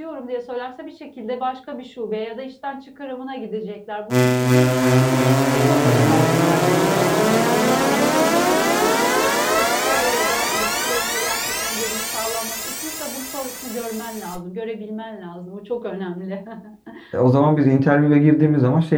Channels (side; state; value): both; identical; correlation 1.00